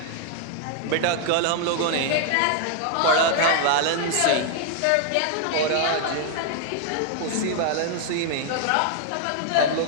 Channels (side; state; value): both; different; correlation 0.00